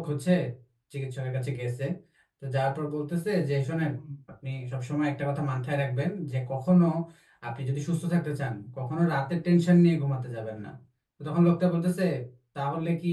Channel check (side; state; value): both; identical; correlation 1.00